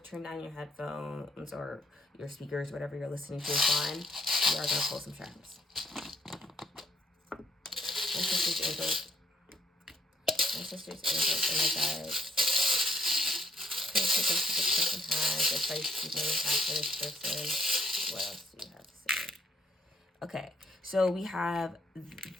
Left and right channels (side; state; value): both; normal; correlation 0.69